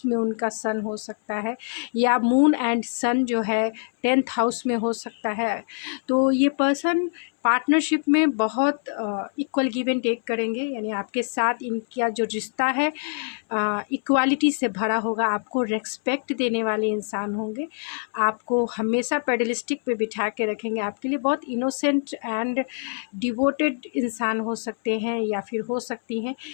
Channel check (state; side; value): silent; right; 62 dB below the other